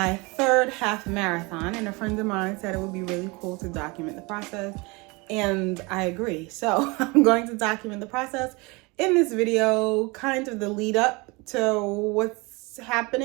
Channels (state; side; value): quieter; left; 26.3 dB